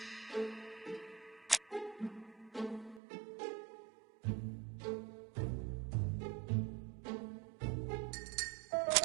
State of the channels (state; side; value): drops out; left; at 3.0 s